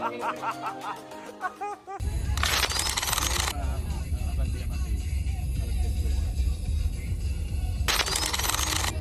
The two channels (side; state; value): both; identical; correlation 1.00